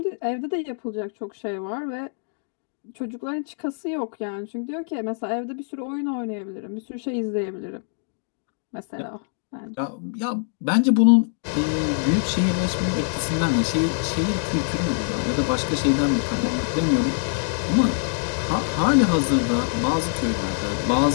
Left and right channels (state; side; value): silent; right; digital silence